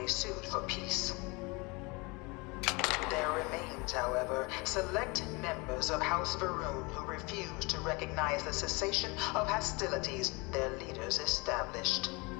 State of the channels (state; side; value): quieter; right; 27.2 dB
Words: sued for peace. There remains, however, select members of House Varun who refuse to recognize the cessation of hostilities their leaders established.